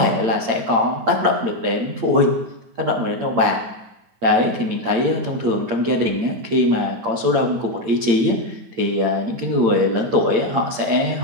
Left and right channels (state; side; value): late; left; 8.8 ms